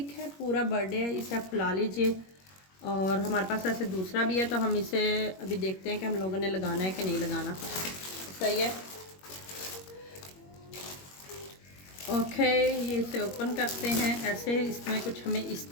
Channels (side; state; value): right; late; 21 ms